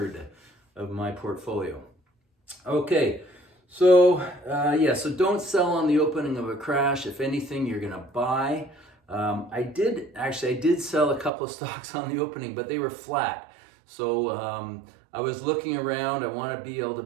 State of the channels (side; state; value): left; drops out; at 11.3 s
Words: of my portfolio. Okay, so so don't sell on the opening of a crash. If anything, you're gonna buy. I did sell a couple of stocks on the opening, but they were flat. So I was looking around. I want to be able to